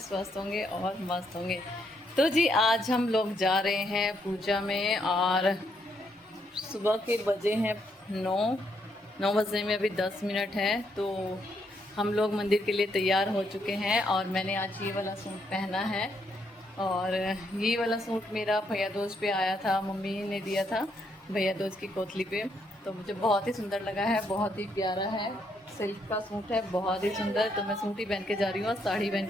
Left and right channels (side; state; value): both; normal; correlation 0.75